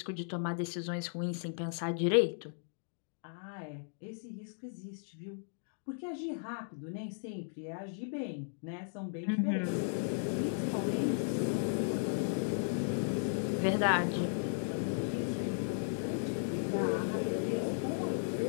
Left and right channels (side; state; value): right; silent; digital silence